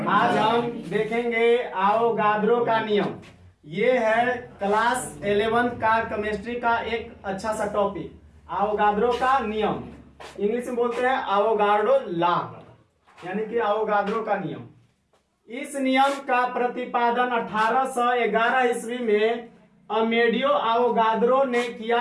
आज हम देखेंगे आवोगाद्रो का नियम। ये है क्लास 11 का केमिस्ट्री का एक अच्छा सा टॉपिक, आवोगाद्रो का नियम। इंग्लिश में बोलते हैं आवोगाड्रो लॉ, यानी कि आवोगाद्रो का नियम। इस नियम का प्रतिपादन 1811 ईस्वी में अमेडियो आवोगाद्रो ने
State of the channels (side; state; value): both; identical; correlation 1.00